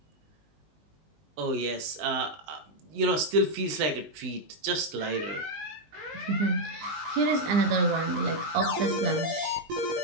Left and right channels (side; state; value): left; late; 19 ms